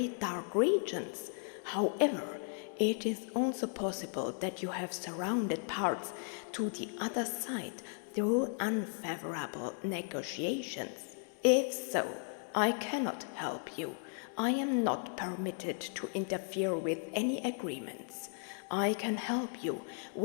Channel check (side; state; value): right; silent; 54 dB below the other